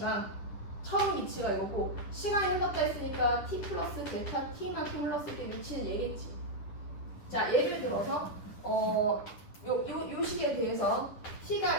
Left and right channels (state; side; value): late; right; 10 ms